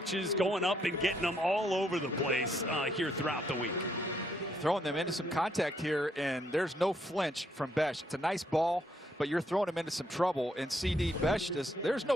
going up and getting them all over the place here throughout the week. throwing them into some contact here, and there's no flinch from Besh. It's a nice ball, but you're throwing him into some trouble. And CD Besh, there's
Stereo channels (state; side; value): normal; both; correlation 0.73